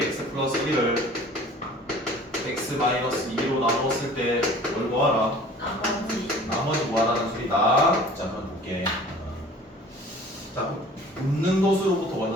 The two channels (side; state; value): both; normal; correlation 0.47